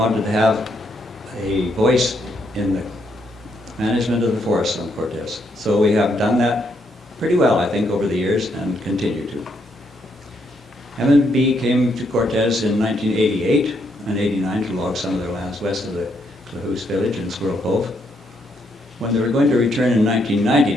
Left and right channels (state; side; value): normal; both; correlation 0.75